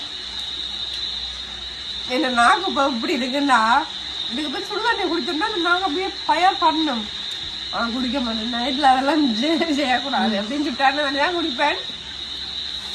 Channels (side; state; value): both; identical; correlation 1.00